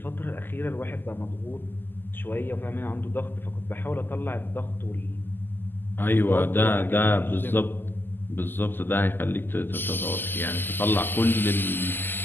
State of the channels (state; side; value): late; right; 0.094 ms